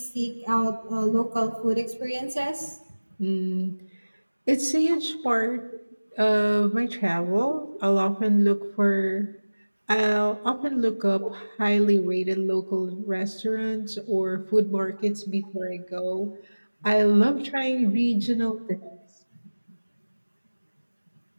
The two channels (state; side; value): inverted; both; correlation -1.00